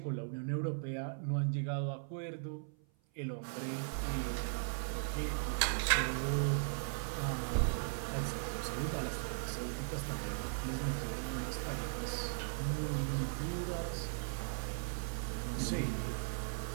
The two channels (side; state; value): left; silent; 52 dB below the other